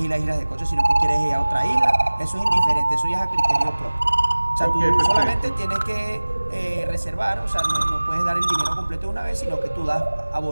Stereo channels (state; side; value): inverted; both; correlation -1.00